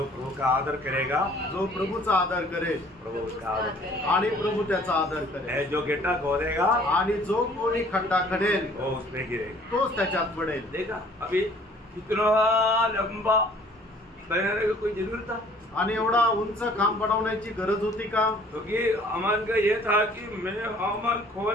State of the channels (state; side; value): normal; both; correlation 0.55